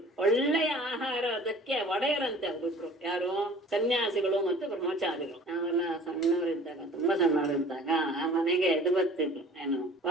ಒಳ್ಳೆಯ ಆಹಾರ ಅದಕ್ಕೆ ಒಡೆಯರಂತೆ ಅವರಿಬ್ರು, ಯಾರು ಸನ್ಯಾಸಿಗಳು ಮತ್ತು ಬ್ರಹ್ಮಚಾರಿಗಳು. ನಾವೆಲ್ಲ ಸಣ್ಣವರಿದ್ದಾಗ, ತುಂಬಾ ಸಣ್ಣವರಿದ್ದಾಗ ಆ ಮನೆಗೆ ಇದು ಬರ್ತಿದ್ರು, ಏನು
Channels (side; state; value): both; normal; correlation 0.47